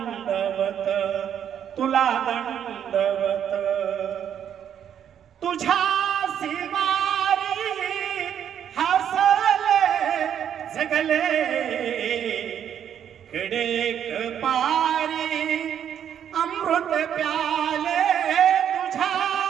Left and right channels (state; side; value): quieter; left; 9.2 dB